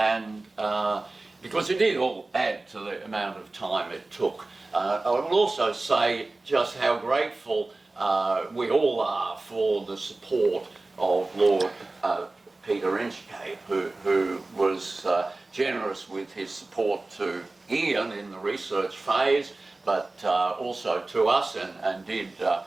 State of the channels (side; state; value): left; quieter; 3.1 dB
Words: because it did all add to the amount of time it took. I will also say just how grateful we all are for the support of Lord Peter Inchcape, who was generous with his support to Ian in the research phase, but also to us, and did